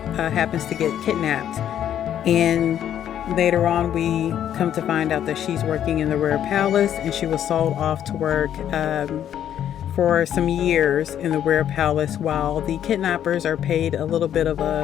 happens to get kidnapped. And later on, we come to find out that she's working in the Rare Palace, and she was sold off to work for some years in the Rare Palace, while the kidnappers are paid a little bit of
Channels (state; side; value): quieter; right; 10.3 dB